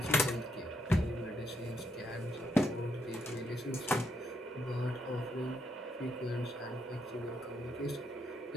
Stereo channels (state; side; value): normal; both; correlation 0.77